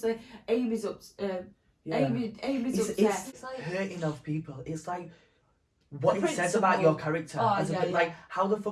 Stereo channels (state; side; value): identical; both; correlation 1.00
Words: Amy's upset. Amy's upset. It's like hurting of people. It's like what it says about your character. Like, how the